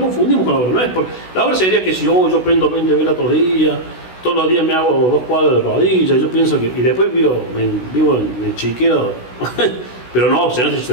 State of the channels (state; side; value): late; right; 16 ms